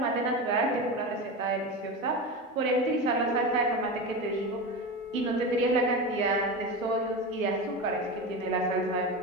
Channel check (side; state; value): both; normal; correlation 0.23